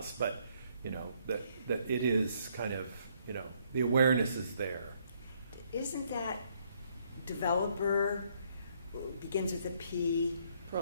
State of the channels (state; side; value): inverted; both; correlation -0.69